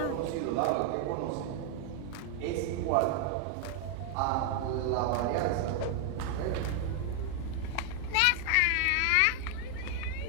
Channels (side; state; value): both; different; correlation 0.00